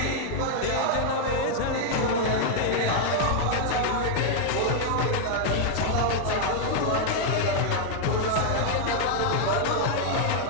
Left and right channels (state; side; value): different; both; correlation 0.00